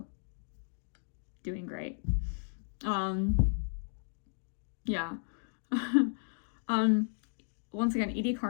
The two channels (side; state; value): right; silent; 55 dB below the other